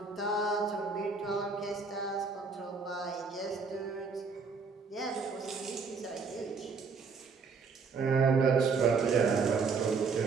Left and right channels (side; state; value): left; quieter; 4.9 dB